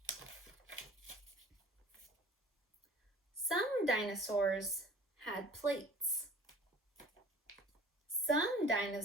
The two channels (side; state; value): both; normal; correlation 0.46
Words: Some dinosaurs had plates. Some